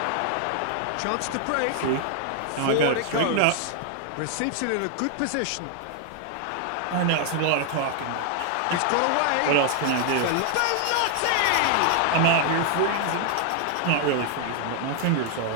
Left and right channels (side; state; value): both; different; correlation 0.00